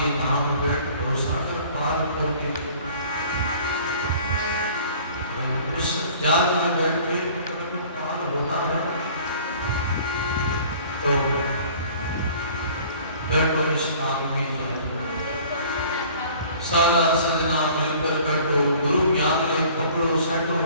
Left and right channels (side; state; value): both; inverted; correlation -0.50